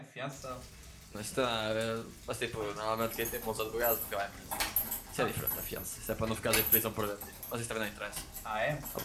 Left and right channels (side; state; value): both; identical; correlation 1.00